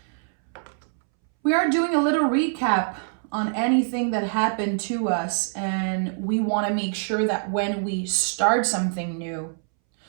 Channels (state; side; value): silent; left; 62 dB below the other